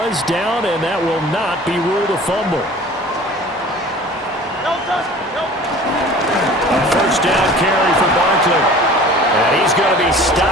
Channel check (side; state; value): both; normal; correlation 0.44